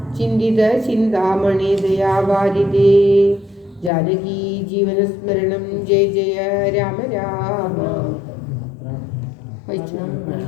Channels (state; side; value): drops out; right; at 3.9 s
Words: ചിന്തിത ചിന്താമണി ദയാവാരിതേ. ജാനകി ജീവനസ്മരണം ജയ ജയ രാമ രാമ.